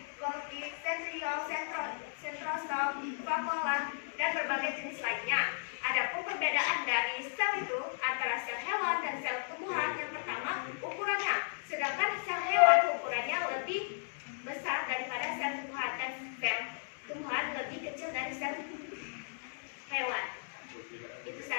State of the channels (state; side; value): silent; right; digital silence